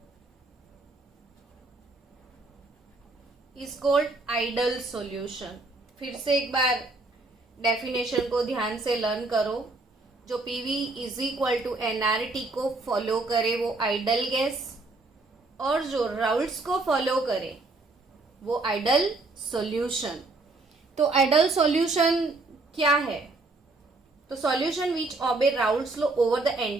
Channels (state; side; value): quieter; left; 3.3 dB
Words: is called ideal solution। फिर से एक बार definition को ध्यान से learn करो। जो PV is equal to NRT को follow करे वो आइडल गैस, और जो राउल्ट्स को फॉलो करे वो आइडल सॉल्यूशन। तो आइडल सॉल्यूशन क्या है? तो solution which obey Raoult's law over the